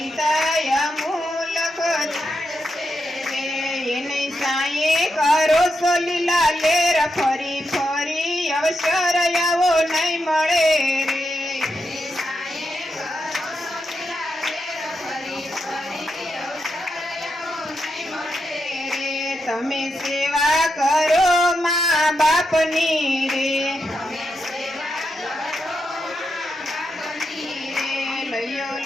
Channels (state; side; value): normal; both; correlation 0.85